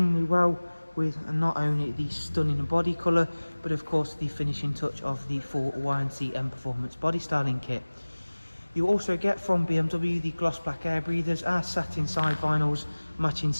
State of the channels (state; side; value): inverted; both; correlation -1.00